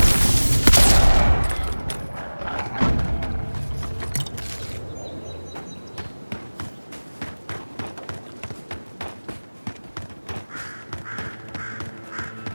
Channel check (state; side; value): inverted; both; correlation -1.00